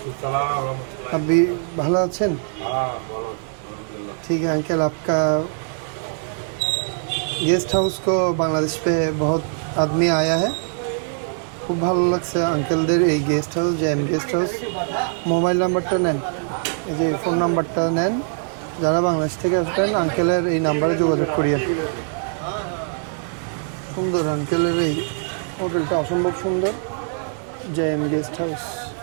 सलाम रहमतुल्लाह। अभी ভালো আছেন? हाँ बोलो अल्हम्दुलिल्लाह। ठीक है अंकल, आपका गेस्ट हाउस को बांग्लादेश पे बहुत आदमी आया है। খুব ভালো লাগছে আঙ্কেলদের এই guest house, JM guest house. Mobile নাম্বারটা নেন, এই যে ফোন নাম্বারটা নেন। যারা বাংলাদেশ থেকে আসবেন আঙ্কেলের এই নাম্বারে যোগাযোগ করিয়ে। সুন্দর আঙ্কেলের এই হোটেলটা, অসম্ভব সুন্দর। জেএম গেস্ট হাউস,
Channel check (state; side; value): silent; left; 64 dB below the other